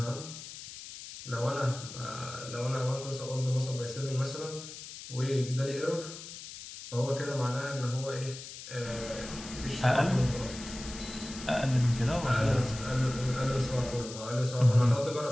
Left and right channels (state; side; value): noise; left; hiss, 12 dB below the sound